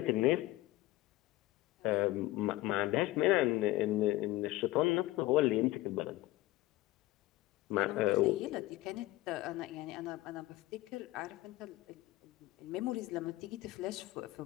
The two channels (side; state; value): right; quieter; 17.8 dB